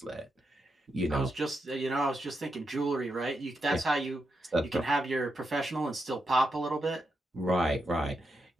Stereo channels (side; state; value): both; normal; correlation 0.85